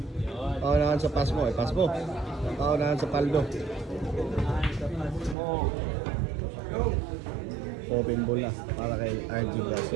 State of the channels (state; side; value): drops out; left; at 5.4 s